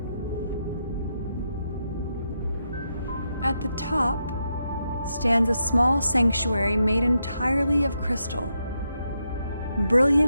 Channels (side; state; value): both; inverted; correlation -0.82